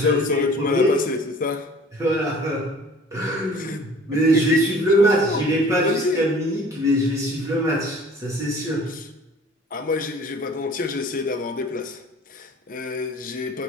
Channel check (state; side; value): normal; both; correlation 0.48